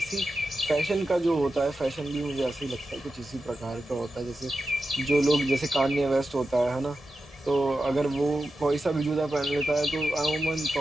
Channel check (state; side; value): normal; both; correlation 0.91